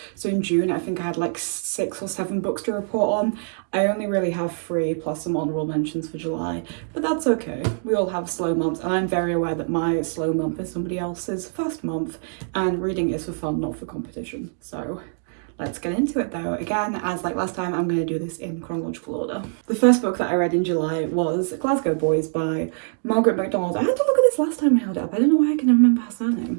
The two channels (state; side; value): silent; left; digital silence